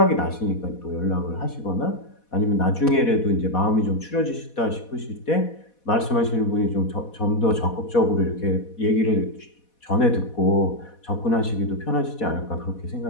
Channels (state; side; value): late; right; 4.1 ms